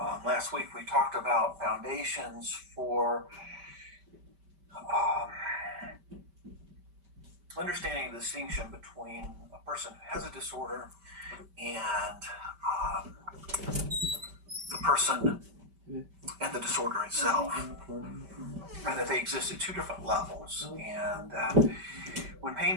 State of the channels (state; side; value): late; left; 5.1 ms